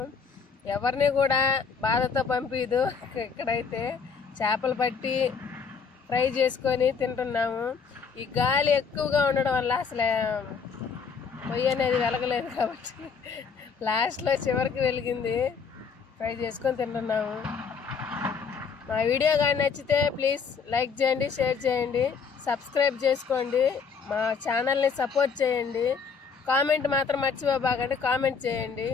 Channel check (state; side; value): quieter; right; 5.7 dB